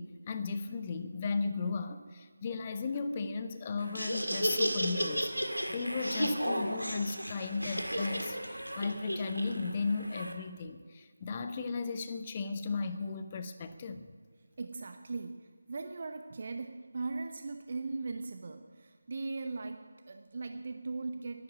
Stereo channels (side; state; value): both; inverted; correlation -0.90